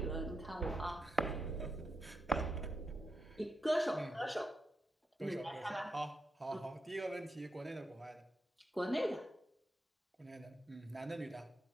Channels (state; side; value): normal; both; correlation 0.84